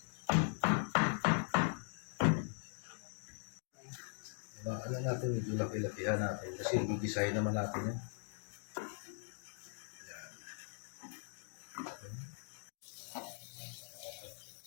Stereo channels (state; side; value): silent; right; digital silence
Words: Alam natin, medyo laki-lakihan natin kasi gigisahin naman natin yan.